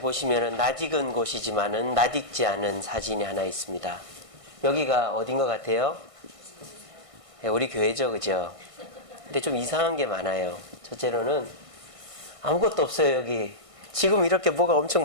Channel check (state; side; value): late; left; 1.6 ms